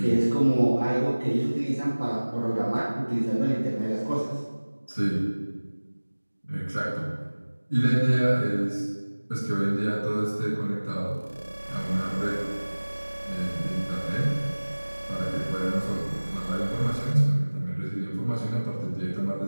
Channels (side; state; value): both; inverted; correlation -1.00